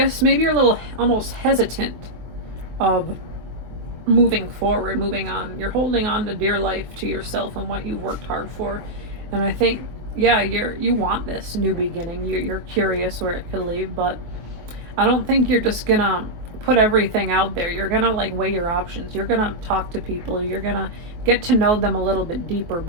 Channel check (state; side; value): late; left; 23 ms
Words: Maybe you're a little almost hesitant of moving forward, moving on. You're holding on to dear life to yourself and what you've worked hard for. And I think, yeah, you want this new beginning. You're curious where it could lead, but I don't think you're just gonna put everything out there. You're gonna like weigh your options. You're gonna talk to people. You're gonna get to know them a little bit deeper